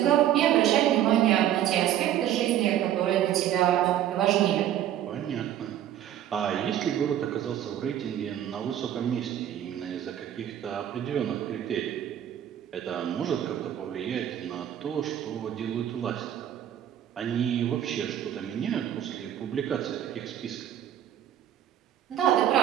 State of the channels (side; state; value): left; quieter; 11.2 dB